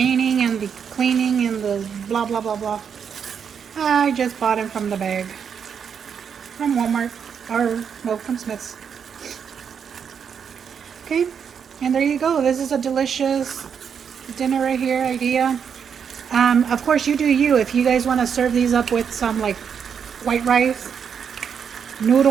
and the cleaning and the blah, blah, blah, blah. I just bought them from the bag. From Walmart, or, well, from Smith's. Okay, and there you go. This is a delicious dinner right here idea. Of course, you do you. If you guys want to serve these up with some like white rice,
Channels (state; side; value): quieter; left; 7.2 dB